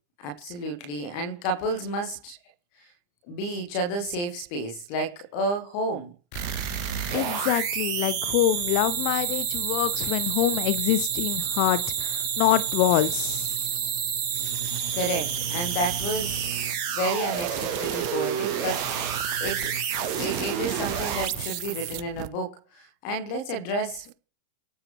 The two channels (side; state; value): right; late; 34 ms